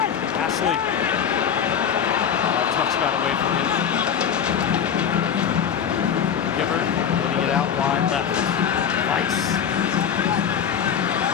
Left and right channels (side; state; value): right; quieter; 8.0 dB